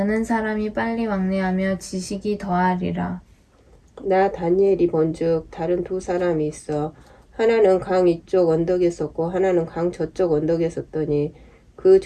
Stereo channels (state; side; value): identical; both; correlation 1.00